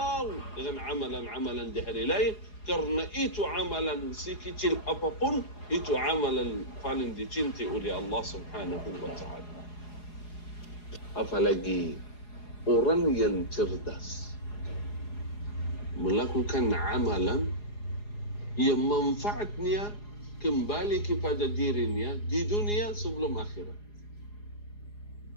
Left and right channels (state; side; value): late; right; 4.8 ms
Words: dengan amalan-amalan di hari lain. Karena itu amalan sekecil apapun, itu amalan paling dicintai oleh Allah Subhanahu wa ta'ala. Apalagi orang yang cerdas melakukan amalan yang manfaatnya kembali kepada dirinya di dunia sebelum akhirat.